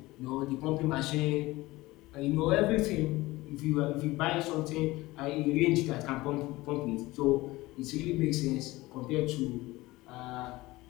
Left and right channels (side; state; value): right; quieter; 19.7 dB